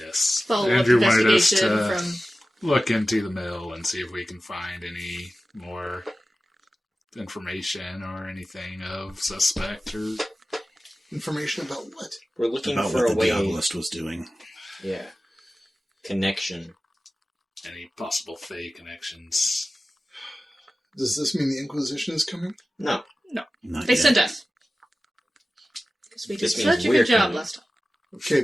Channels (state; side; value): normal; both; correlation 0.95